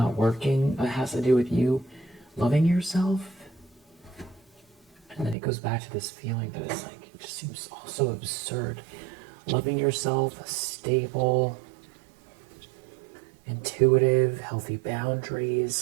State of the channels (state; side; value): drops out; left; at 5.4 s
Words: working. It has to do with you loving yourself. And then it goes back to this feeling that it's like, it just seems all so absurd. Loving yourself, stable, intuitive, healthy boundaries,